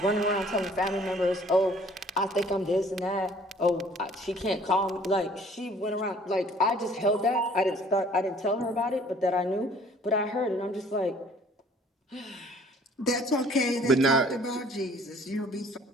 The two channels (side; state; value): both; normal; correlation 0.55